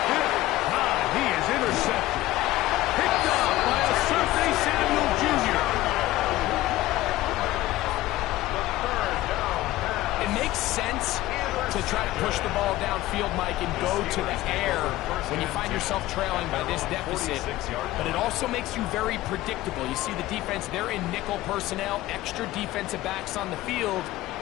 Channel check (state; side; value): quieter; right; 16.6 dB